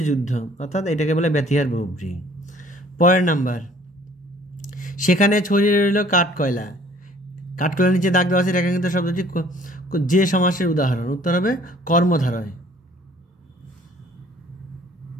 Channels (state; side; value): normal; both; correlation 0.55